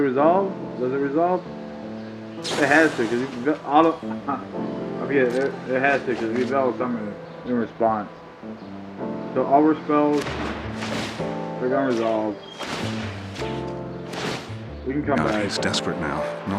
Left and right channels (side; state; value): both; identical; correlation 1.00